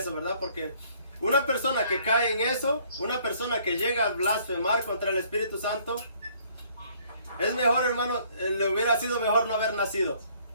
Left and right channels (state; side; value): inverted; both; correlation -0.61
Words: ¿verdad? Porque una persona que cae en eso, una persona que llega a blasfemar contra el Espíritu Santo, es mejor, hermano, le hubiera sido mejor no haber nacido.